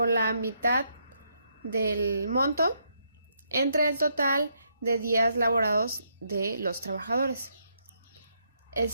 la mitad del monto entre el total de días laborados de los trabajadores. El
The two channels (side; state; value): both; inverted; correlation -0.76